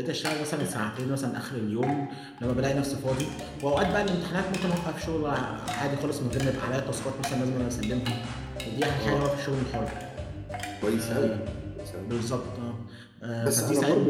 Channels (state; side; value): identical; both; correlation 1.00